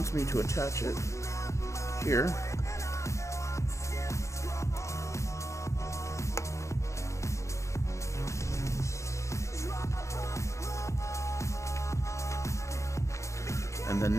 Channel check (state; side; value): late; right; 0.14 ms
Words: me to attach it here.